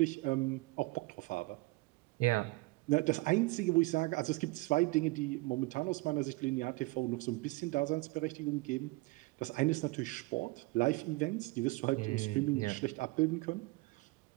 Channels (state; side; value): quieter; left; 23.3 dB